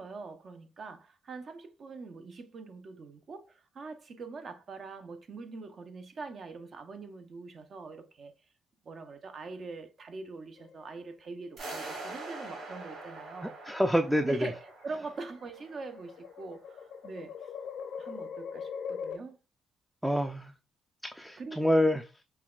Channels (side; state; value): both; normal; correlation 0.90